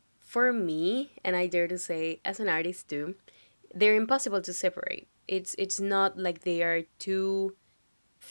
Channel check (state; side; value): inverted; both; correlation -1.00